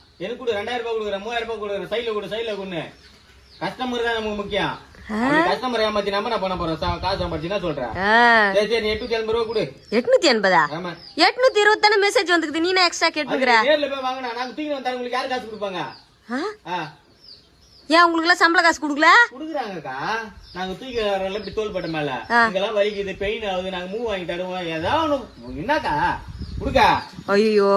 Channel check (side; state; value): both; identical; correlation 1.00